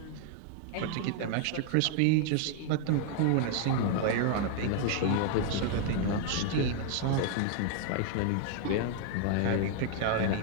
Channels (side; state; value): both; different; correlation 0.00